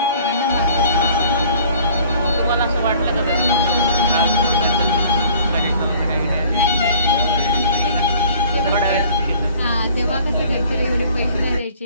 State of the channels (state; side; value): inverted; both; correlation -0.52